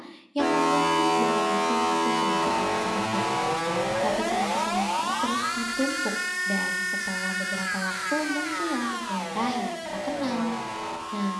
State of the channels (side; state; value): both; identical; correlation 1.00